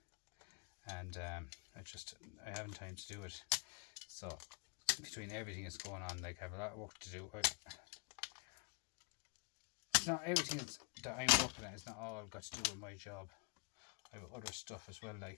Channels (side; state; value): right; quieter; 34.6 dB